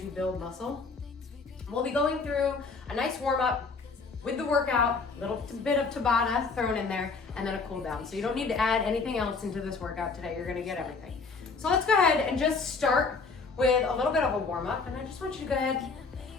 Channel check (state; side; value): quieter; right; 4.5 dB